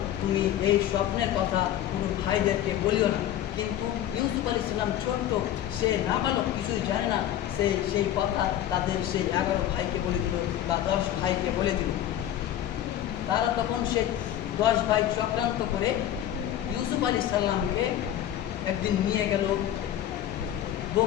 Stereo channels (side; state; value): right; quieter; 11.7 dB